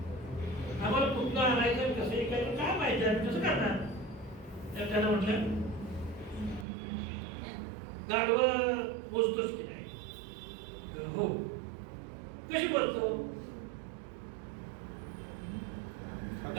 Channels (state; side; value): drops out; left; at 6.7 s